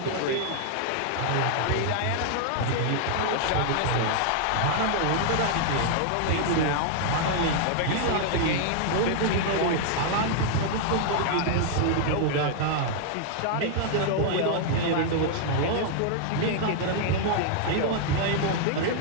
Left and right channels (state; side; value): different; both; correlation -0.01